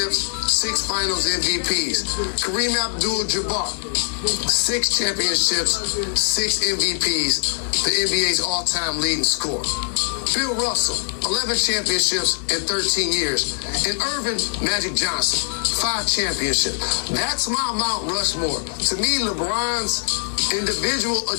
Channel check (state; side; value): silent; right; digital silence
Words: 6 finals MVPs. Kareem Abdul-Jabbar, 6 championships, 6 MVPs, the NBA's all-time leading scorer. Bill Russell, 11 championships in 13 years. And Irvin Magic Johnson, 5 championships. That's my Mount Rushmore. To me, LeBron's individual